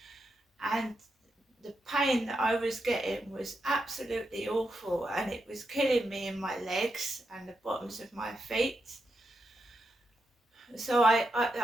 and the pain that I was getting was absolutely awful, and it was killing me in my legs and the bottoms of my feet. So I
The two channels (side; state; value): both; normal; correlation 0.85